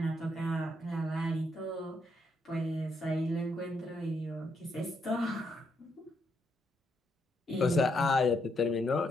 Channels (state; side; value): normal; both; correlation 0.77